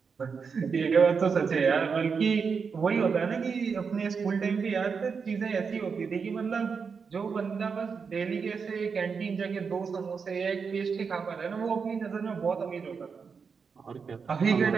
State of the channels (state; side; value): quieter; left; 5.7 dB